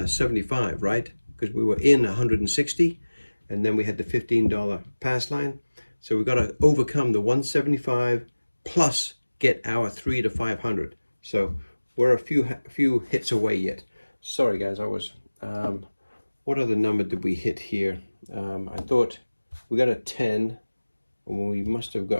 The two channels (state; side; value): inverted; both; correlation -1.00